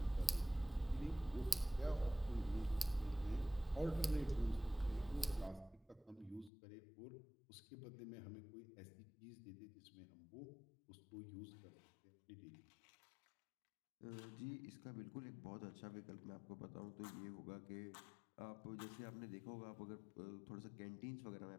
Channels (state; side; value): drops out; right; at 6.5 s